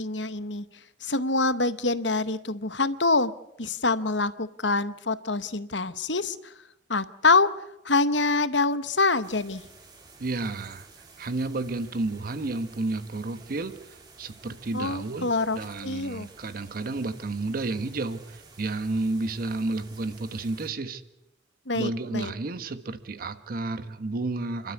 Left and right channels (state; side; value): normal; both; correlation 0.00